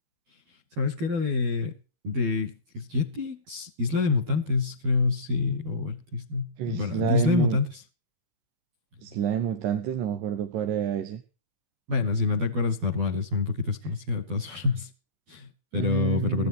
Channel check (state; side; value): late; left; 12 ms